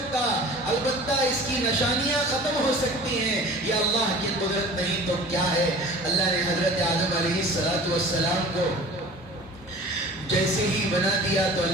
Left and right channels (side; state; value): both; normal; correlation 0.42